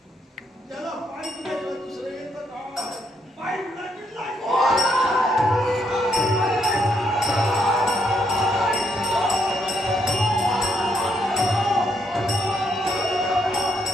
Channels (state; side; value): normal; both; correlation 0.75